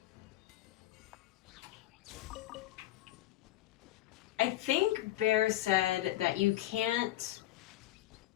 I think Bear said that you can't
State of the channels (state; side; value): quieter; right; 15.1 dB